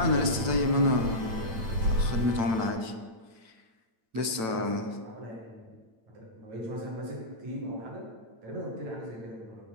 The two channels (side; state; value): left; late; 8.9 ms